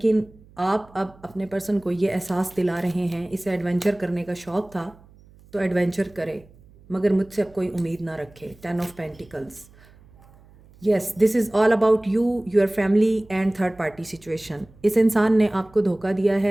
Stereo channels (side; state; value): right; noise; hum, 26 dB below the sound